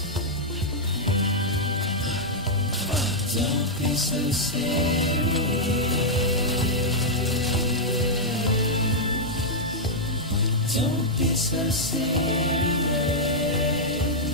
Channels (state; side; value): normal; both; correlation -0.06